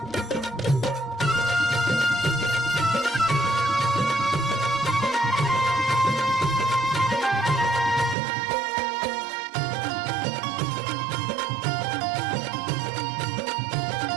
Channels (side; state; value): left; drops out; at 8.2 s